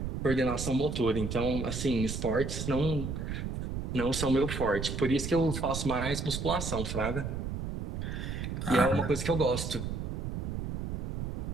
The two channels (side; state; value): right; noise; rumble, 3 dB below the sound